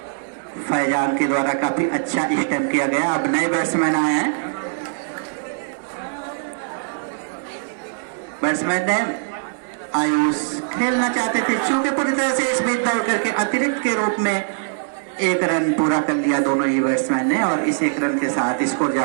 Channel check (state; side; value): silent; left; 65 dB below the other